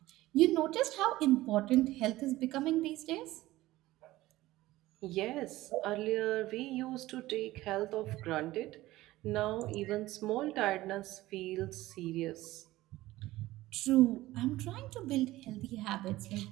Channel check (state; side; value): quieter; left; 17.1 dB